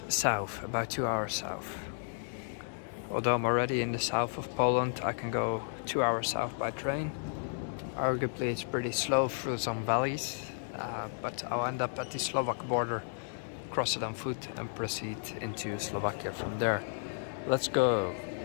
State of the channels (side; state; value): right; silent; digital silence